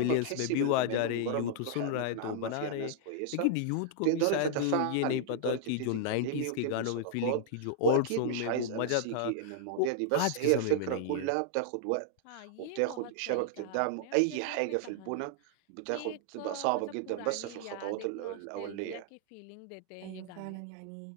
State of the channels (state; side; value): different; both; correlation -0.01